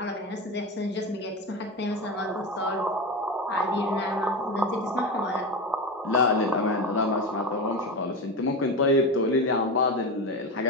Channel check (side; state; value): both; normal; correlation 0.21